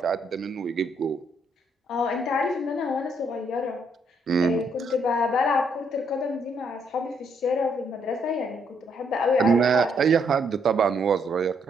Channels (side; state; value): both; normal; correlation 0.72